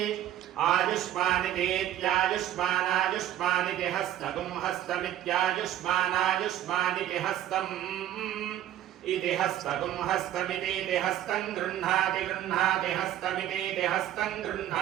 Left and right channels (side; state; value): left; quieter; 12.1 dB